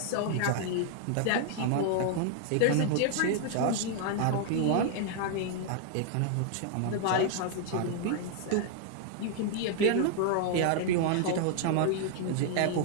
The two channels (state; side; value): different; both; correlation 0.00